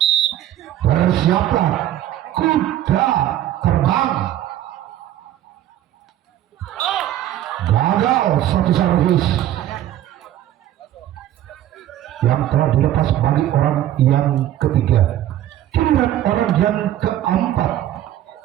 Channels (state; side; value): quieter; left; 12.5 dB